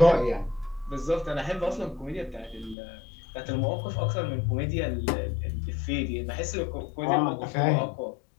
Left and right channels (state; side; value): drops out; right; at 2.8 s